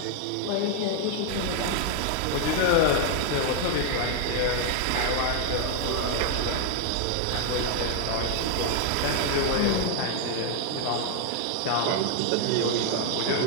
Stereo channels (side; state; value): both; different; correlation 0.00